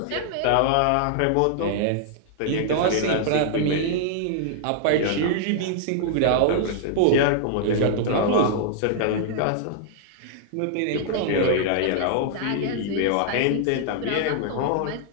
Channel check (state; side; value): different; both; correlation -0.01